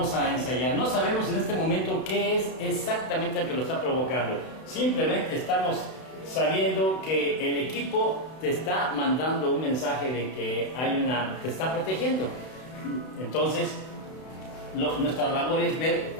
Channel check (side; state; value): right; late; 32 ms